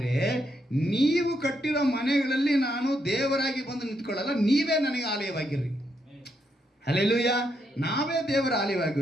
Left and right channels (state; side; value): normal; both; correlation 0.78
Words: ನೀವು ಕಟ್ಟಿರೋ ಮನೆಗಳಲ್ಲಿ ನಾನು ದೇವರಾಗಿ ಬಂದು ನಿಂತ್ಕೊಳ್ಳಲ್ಲ, ನೀವೇ ನನಗೆ ಆಲಯವಾಗಿರ್ರಿ. ಹಲ್ಲೆಲೂಯಾ. ನಾವೇ ದೇವರ